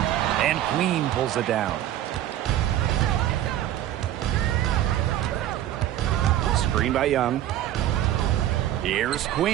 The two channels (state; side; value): quieter; left; 12.6 dB